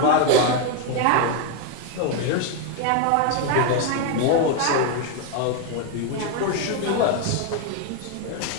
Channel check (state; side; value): different; both; correlation 0.01